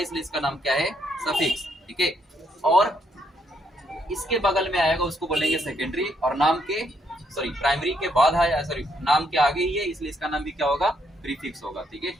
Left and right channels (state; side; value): normal; both; correlation 0.74